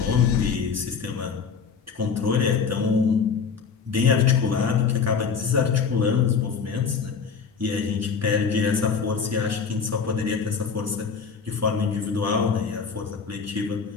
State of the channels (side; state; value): right; quieter; 5.9 dB